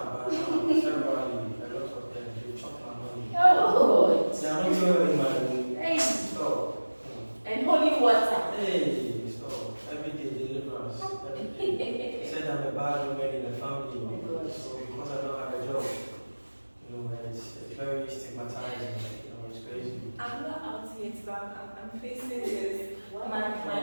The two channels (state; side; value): inverted; both; correlation -1.00